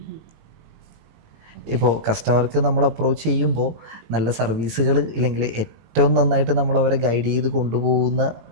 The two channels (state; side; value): late; left; 18 ms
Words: ഇപ്പോൾ കസ്റ്റമർക്ക് നമ്മൾ അപ്രോച്ച് ചെയ്യുമ്പോൾ നല്ല സർവീസുകൾ ഇല്ലെങ്കിൽ ഏറ്റവും നന്നായിട്ട് നമ്മൾ അവരെ ഗൈഡ് ചെയ്ത്